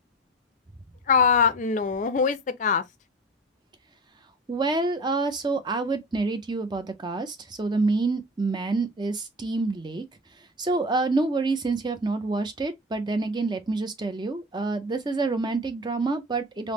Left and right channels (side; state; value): both; normal; correlation 0.34